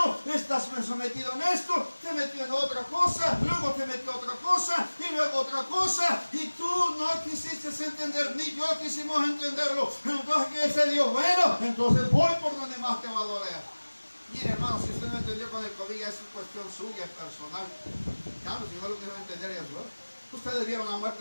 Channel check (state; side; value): inverted; both; correlation -1.00